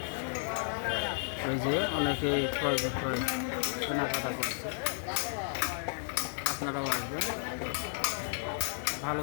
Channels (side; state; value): right; silent; digital silence